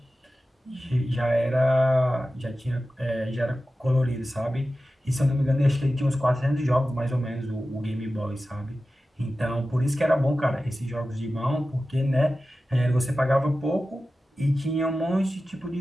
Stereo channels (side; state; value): both; normal; correlation 0.94